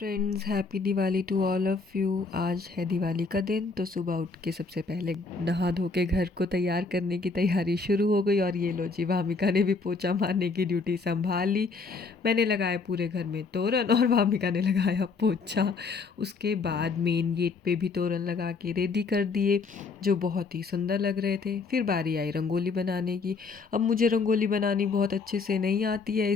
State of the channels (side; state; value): right; quieter; 4.3 dB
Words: Friends, happy Diwali to all of you. आज है दिवाली का दिन, तो सुबह उठ के सबसे पहले नहा धो के घर को तैयार करने की तैयारी शुरू हो गई। और ये लो जी, भामिका ने भी पोछा मारने की ड्यूटी संभाल ली। मैंने लगाया पूरे घर में तोरण और भामिका ने लगाया पोछा। उसके बाद मेन गेट पे भी तोरण लगा के रेडी कर दिए, जो बहुत ही सुंदर लग रहे थे। फिर बारी आई रंगोली बनाने की। अब मुझे रंगोली बनानी बहुत अच्छे से नहीं आती है,